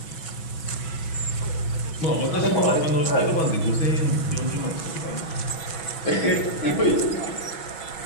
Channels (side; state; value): right; late; 6.1 ms